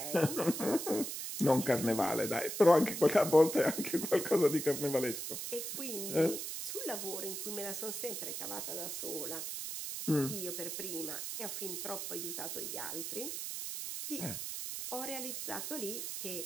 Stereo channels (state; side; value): noise; right; hiss, 5 dB below the sound